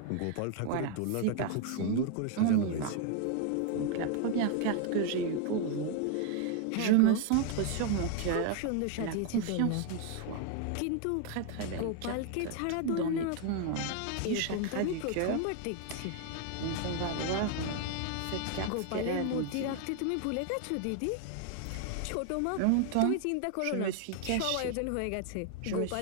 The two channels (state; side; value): different; both; correlation 0.00